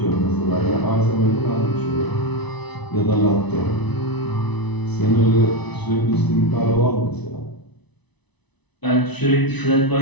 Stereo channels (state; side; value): late; right; 1.0 ms